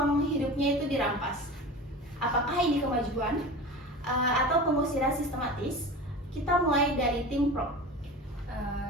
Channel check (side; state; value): both; normal; correlation 0.33